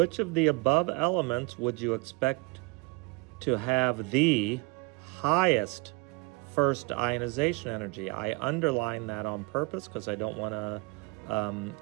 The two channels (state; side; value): quieter; left; 25.8 dB